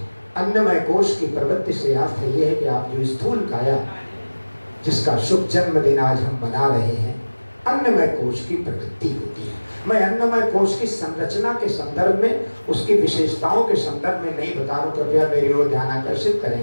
अन्नमय कोश की प्रवृत्ति से अर्थ ये है कि आप जो स्थूल काया, जिसका शुभ जन्मदिन आज हम मना रहे हैं, अन्नमय कोश की प्रवृत्ति होती है। मैं अन्नमय कोश की संरचना के संदर्भ में, उसकी विशेषताओं के संदर्भ में नहीं बता रहा हूं, कृपया मेरी ओर ध्यान आकर्षित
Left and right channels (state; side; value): inverted; both; correlation -1.00